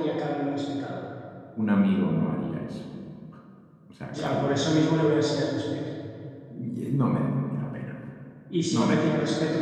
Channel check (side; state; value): both; identical; correlation 1.00